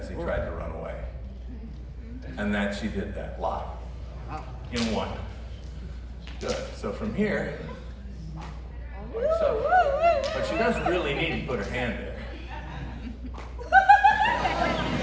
he tried to run away. And then she did that live in one. Good. So from here, like so. But she doesn't really need to put her hand there.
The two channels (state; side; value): identical; both; correlation 1.00